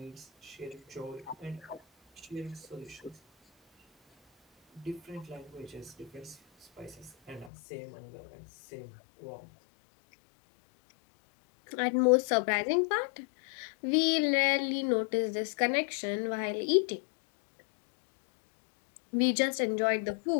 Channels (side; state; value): right; drops out; at 7.5 s